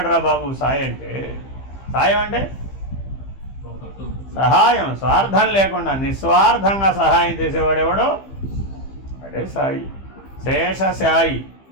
రా బాబు సాయి అంటే. సాయం అంటే సహాయం, స్వార్థం లేకుండా నిస్వార్థంగా సహాయం చేసేవాడెవడో అడే సాయి. శేషశాయి.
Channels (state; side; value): late; right; 15 ms